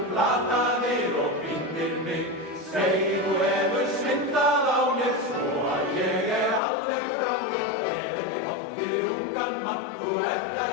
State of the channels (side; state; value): right; drops out; at 6.6 s